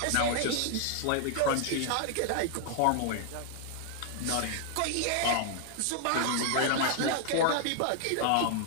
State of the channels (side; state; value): both; different; correlation 0.00